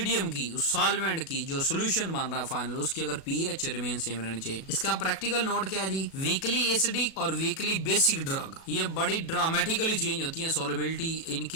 की, उस सॉल्वेंट की जो सोल्यूशन बन रहा है फाइनल, उसकी अगर पीएच रिमेन सेम रहनी चाहिए। इसका प्रैक्टिकल नोट क्या है जी, वीकली एसिडिक और वीकली बेसिक ड्रग ये बड़ी ड्रामेटिकली चेंज होती है सोलबिलिटी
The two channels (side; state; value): right; late; 37 ms